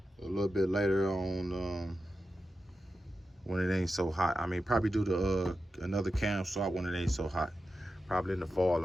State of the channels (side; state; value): both; normal; correlation 0.91